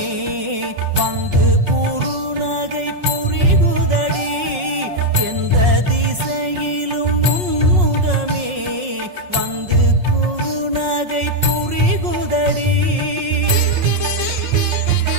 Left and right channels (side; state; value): left; late; 5.5 ms